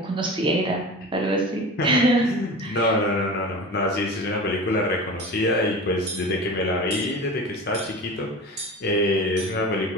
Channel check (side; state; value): both; normal; correlation 0.33